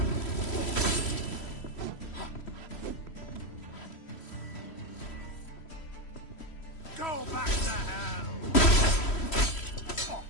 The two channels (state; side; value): late; right; 3.1 ms